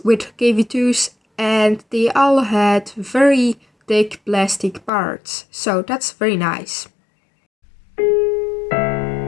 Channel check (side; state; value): right; drops out; at 4.9 s